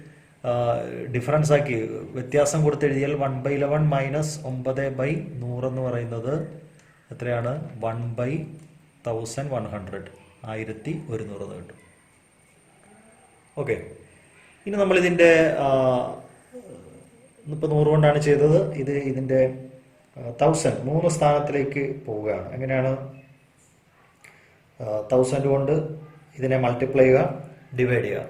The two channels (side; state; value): both; identical; correlation 1.00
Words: ഡിഫറൻസ് ആക്കി വ്യത്യാസം കൊടുത്തെഴുതിയാൽ 1 by 11 മൈനസ് 9 by 100 എന്ന് പറയുന്നത് എത്രയാണ്? 1 by 1100, 1100 എന്ന് കിട്ടും. ഓക്കെ, ഇനി നമ്മളിതിൻ്റെ ഇപ്പോൾ 100 കൊണ്ടാണ് ചെയ്തത്. ഇതിൻ്റെ 1000 3 സ്ഥാനത്തിലേക്ക് പോവുകയാണ്. എങ്ങനെയാണ്? 1000 കൊണ്ട് ഇതിനെ മൾട്ടിപ്ലൈ ചെയ്യുക, ഡിവൈഡ് ചെയ്യുക.